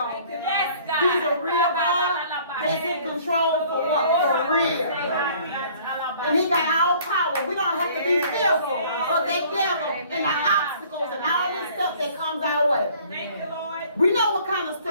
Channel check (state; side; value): inverted; both; correlation -0.54